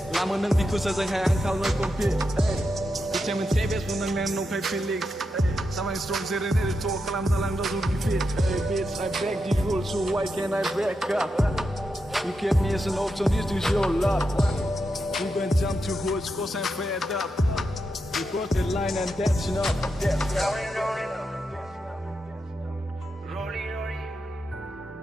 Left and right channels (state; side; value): normal; both; correlation 0.86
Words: lama nang biku sa jang hai angkal no compete kita men sebes pun nang nong kai feelings sama strong zero ni to kalam dalang do be fit hey bitch I break the rules so why can't I break up you kept me as an option this is your love we gonna jump to hoods cause I'm fed up we cross the line and that's enough. Rollin Rollin, Rollin Rollin,